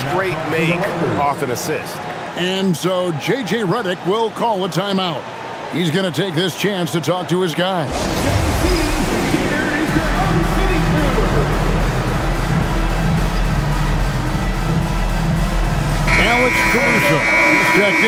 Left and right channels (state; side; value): identical; both; correlation 1.00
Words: make off an assist. And so J.J. Redick will call a timeout. He's going to take this chance to talk to his guys. Alex Caruso is checked